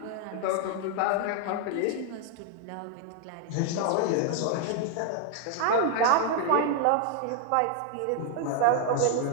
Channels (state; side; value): different; both; correlation 0.00